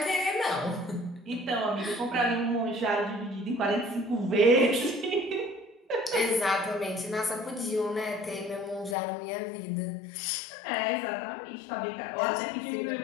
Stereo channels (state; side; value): drops out; right; at 9.0 s